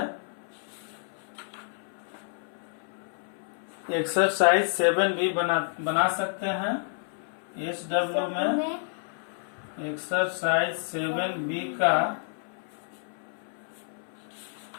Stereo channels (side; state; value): right; silent; 58 dB below the other